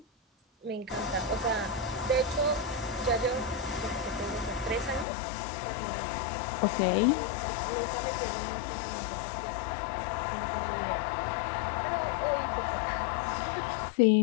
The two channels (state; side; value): drops out; right; at 5.1 s